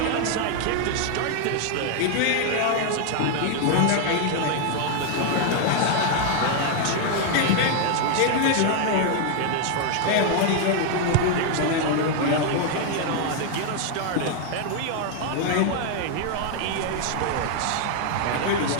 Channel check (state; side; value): different; both; correlation 0.00